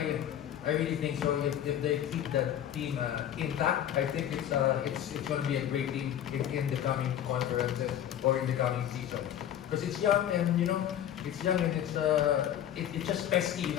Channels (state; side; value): quieter; right; 10.6 dB